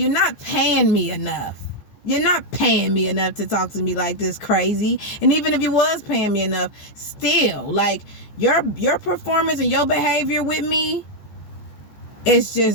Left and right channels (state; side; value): late; right; 14 ms